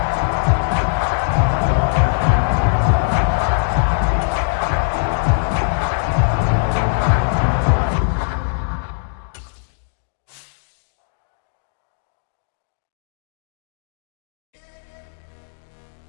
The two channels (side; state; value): right; silent; digital silence